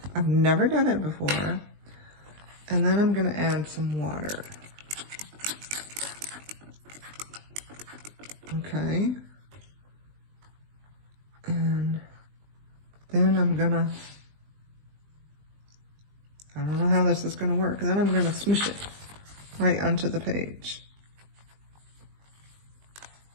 I've never done it before. And then I'm gonna add some water. Okay. And then I'm gonna, I don't know how this is gonna work. Then I'm gonna smush it right onto the page.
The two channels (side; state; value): left; late; 20 ms